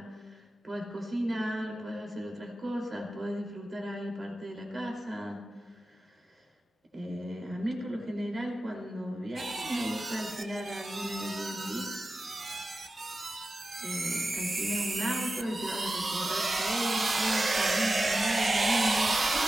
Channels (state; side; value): normal; both; correlation 0.93